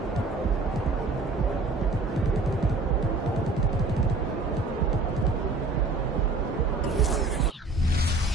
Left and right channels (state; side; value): quieter; left; 3.5 dB